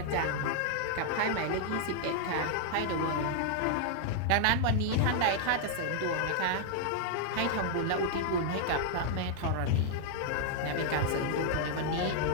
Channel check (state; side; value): different; both; correlation -0.01